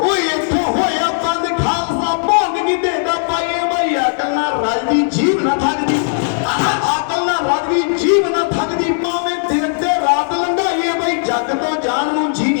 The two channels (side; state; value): right; silent; digital silence